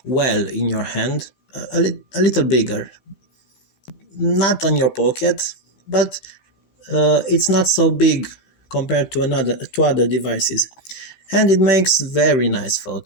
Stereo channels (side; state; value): right; late; 15 ms